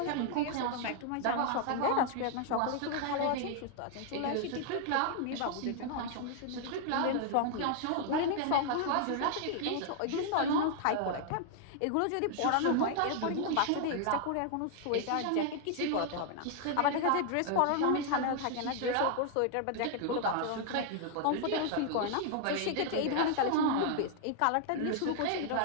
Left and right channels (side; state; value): both; different; correlation 0.00